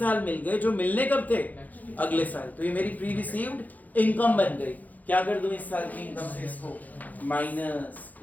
मिल गए, जो मिलने कब थे? अगले साल। तो ये मेरी प्री रिसीव्ड इनकम बन गई। क्या कर दूं इस साल की इनकम से? इसको माइनस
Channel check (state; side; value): late; right; 0.080 ms